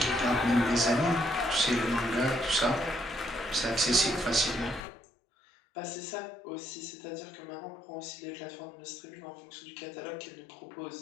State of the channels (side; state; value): right; drops out; at 4.9 s